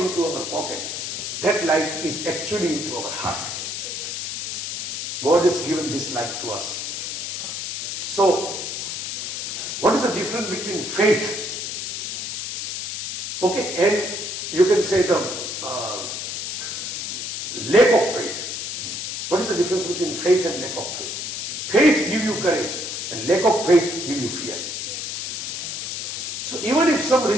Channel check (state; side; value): noise; left; hiss, 4 dB below the sound